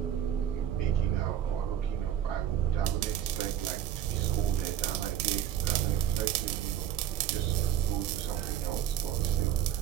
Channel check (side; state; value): left; quieter; 10.5 dB